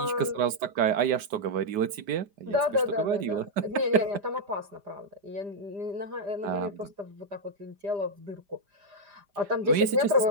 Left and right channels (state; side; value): late; left; 5.0 ms